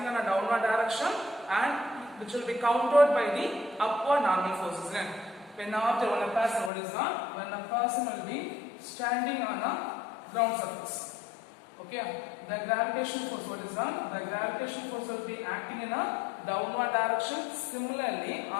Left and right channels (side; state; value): right; drops out; at 6.7 s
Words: on a downward direction, and which will be countered by the upward normal forces. When a person, what is that? When a person will be standing on a ground surface. Okay, the gravitational force, what is that? The gravitational force will be acting in a downward direction. Similarly,